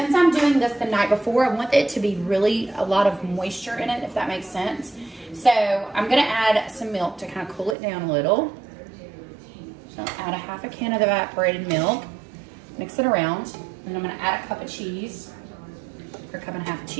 I'm doing this the night before, I want it to be really a lot of moisture in it, if that makes sense. So I'm gonna add some milk to kind of cool it down a little. So add a half a can of evaporated milk, mix it around, and I'm gonna add a cup of cheese, or a cup and a half of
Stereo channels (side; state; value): left; drops out; at 7.8 s